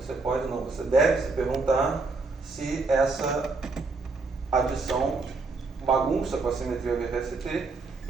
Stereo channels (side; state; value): left; quieter; 3.8 dB